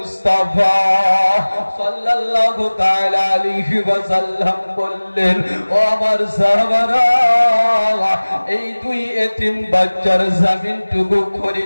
সাল্লাল্লাহু তাআলা আলাইহি ওয়াসাল্লাম বললেন ও আমার সাহাবারা এই দুই এতিম বাচ্চার জমিনটুকু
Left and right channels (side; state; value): both; inverted; correlation -1.00